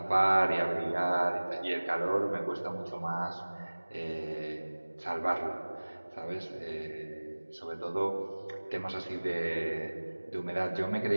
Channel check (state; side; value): inverted; both; correlation -1.00